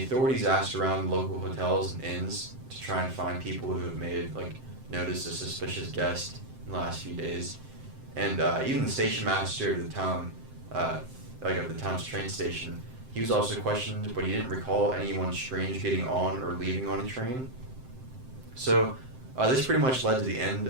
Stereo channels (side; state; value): left; late; 7.7 ms